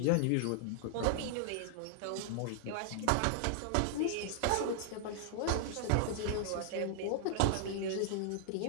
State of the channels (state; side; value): different; both; correlation -0.01